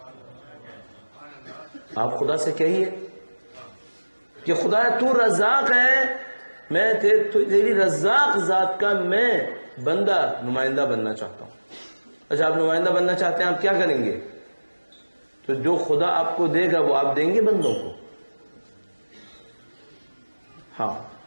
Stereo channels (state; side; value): inverted; both; correlation -1.00